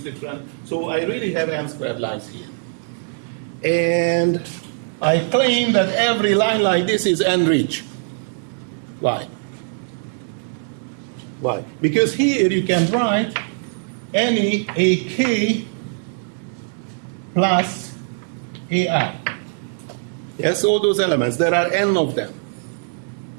different. So I really have n squared lines here. And I claim that every line like this is n-rich. Why? Why? Because here you can write any AK plus AI. Yes, all those elements. There are n of them.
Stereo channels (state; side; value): silent; left; 65 dB below the other